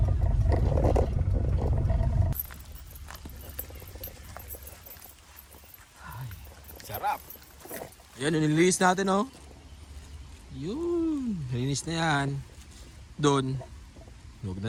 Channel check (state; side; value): identical; both; correlation 1.00